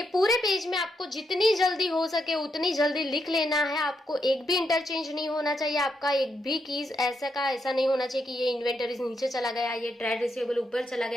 पूरे पेज में आपको जितनी जल्दी हो सके उतनी जल्दी लिख लेना है। आपको एक भी इंटरचेंज नहीं होना चाहिए, आपका एक भी कीज ऐसा का ऐसा नहीं होना चाहिए कि ये इन्वेंटरीज नीचे चला गया, ये ट्रेड रिसीवेबल ऊपर चला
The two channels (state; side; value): normal; both; correlation 0.81